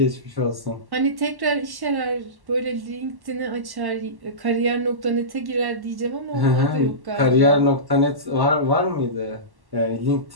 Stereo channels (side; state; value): left; late; 1.1 ms